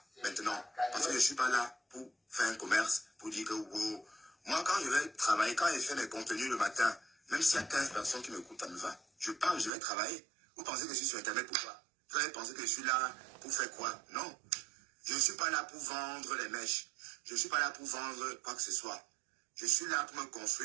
maintenant. Parce que je ne suis pas là pour faire un commerce, pour dire que... Oh, moi, quand je vais travailler, quand je fais mes contenus le matin, même s'il y a 15 personnes qui m'écoutent, ça me va. Je parle, je vais travailler. Vous pensez que je suis sur Internet pour quoi? Vous allez penser que je suis là pour faire quoi? Non. Je ne suis pas là pour vendre les mèches. Je ne suis pas là pour vendre quoi que ce soit. Je suis là pour me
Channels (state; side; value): drops out; left; at 9.7 s